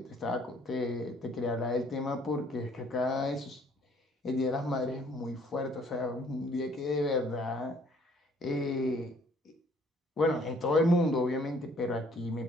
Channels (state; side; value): normal; both; correlation 0.60